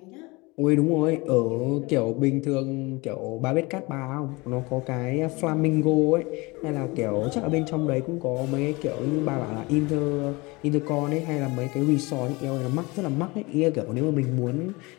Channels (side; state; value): right; quieter; 24.7 dB